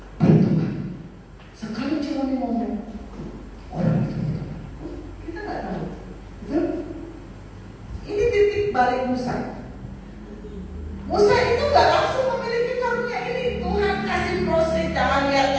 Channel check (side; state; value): both; identical; correlation 1.00